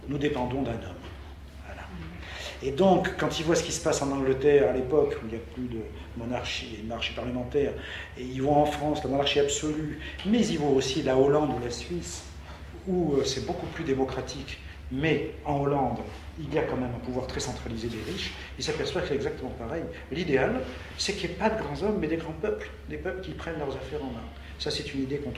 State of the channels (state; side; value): identical; both; correlation 1.00